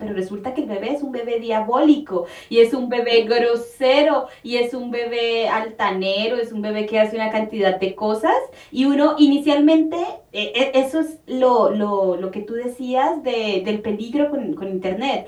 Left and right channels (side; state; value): both; identical; correlation 1.00